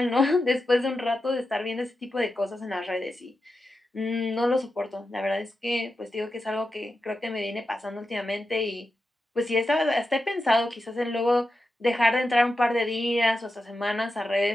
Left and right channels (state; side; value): normal; both; correlation 0.90